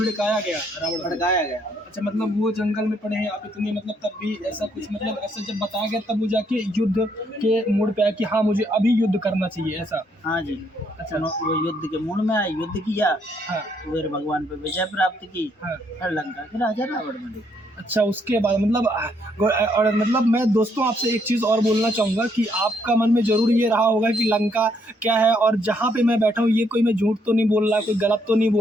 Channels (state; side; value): normal; both; correlation 0.72